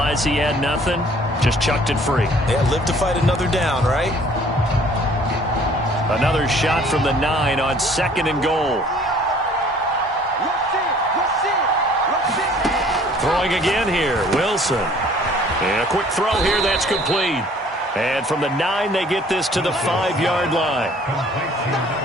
he had nothing, just chucked it free. Yeah, live to fight another down, right? Another shot from the 9 on 2nd and goal. Throwing again here, Wilson. And a quick throw here, that's complete. And from the 9, they get this to the 5-yard line.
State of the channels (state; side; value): normal; both; correlation 0.55